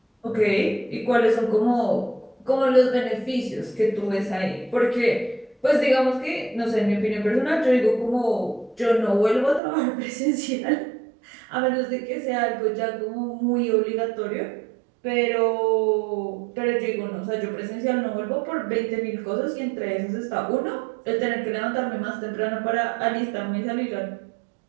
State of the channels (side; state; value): left; drops out; at 9.6 s